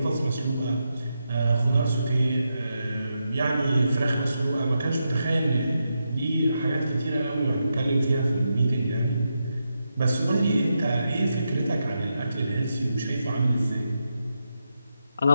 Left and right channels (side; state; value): both; inverted; correlation -0.85